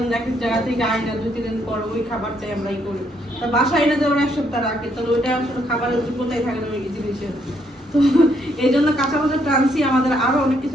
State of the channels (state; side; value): normal; both; correlation 0.72